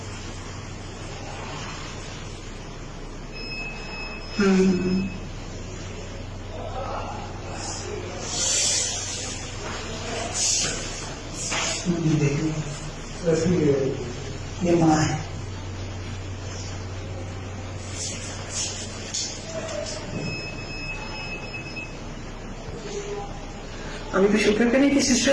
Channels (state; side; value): identical; both; correlation 1.00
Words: ये माँ है। अभी भी शुक्र करें कि